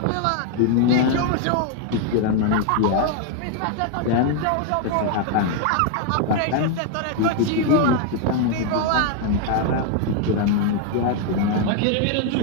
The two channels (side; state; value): both; different; correlation 0.00